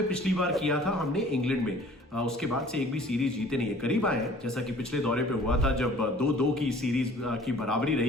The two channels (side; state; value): both; normal; correlation 0.51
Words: पिछली बार किया था हमने इंग्लैंड में। उसके बाद से एक भी सीरीज जीते नहीं है। करीब आए हैं जैसा कि पिछले दौरे पे हुआ था जब 2-2 की सीरीज की बराबरी